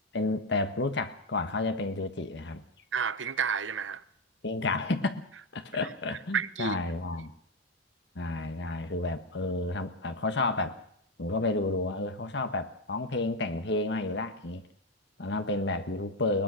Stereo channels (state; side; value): normal; both; correlation 0.09